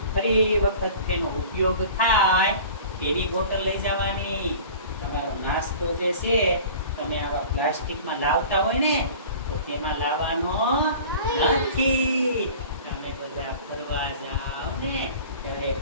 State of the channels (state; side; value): inverted; both; correlation -0.42